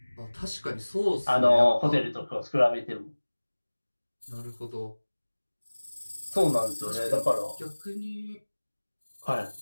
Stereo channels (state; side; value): inverted; both; correlation -1.00